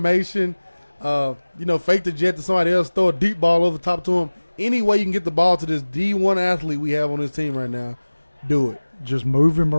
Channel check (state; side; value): inverted; both; correlation -1.00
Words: fake the jet to somebody else, throw a deep ball over top to him. Any way you can get the ball to this D1 athlete we have on this team right now, do it. Just move him